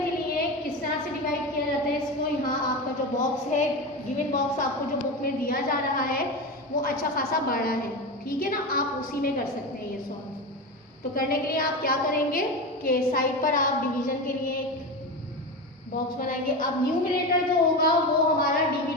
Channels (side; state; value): both; normal; correlation 0.21